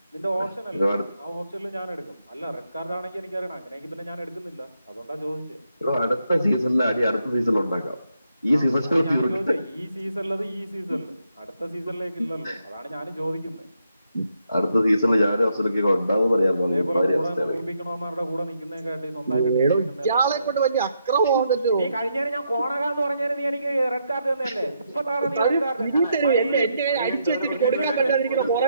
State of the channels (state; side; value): inverted; both; correlation -0.79